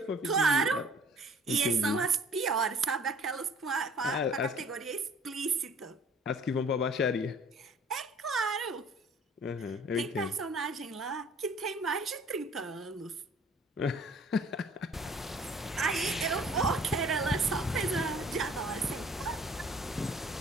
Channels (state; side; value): normal; both; correlation 0.52